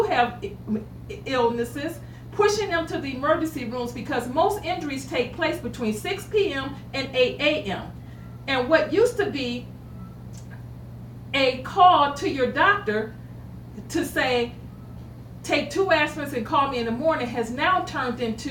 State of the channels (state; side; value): identical; both; correlation 1.00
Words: have illnesses, pushing them to the emergency rooms because most injuries take place between 6 p.m. and 8 a.m. And what used to be a call to your doctor to say, take 2 aspirins and call me in the morning, has now turned